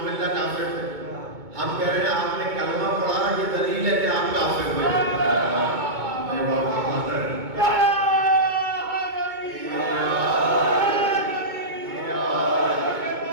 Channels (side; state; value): left; late; 2.2 ms